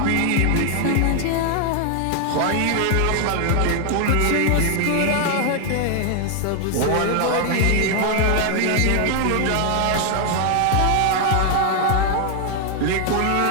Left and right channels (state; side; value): different; both; correlation 0.00